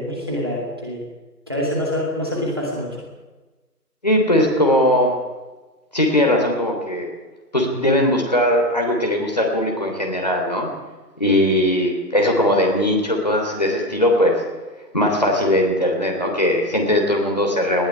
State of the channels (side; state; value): both; normal; correlation 0.19